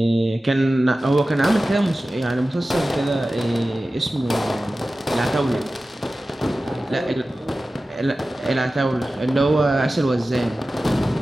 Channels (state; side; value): normal; both; correlation 0.95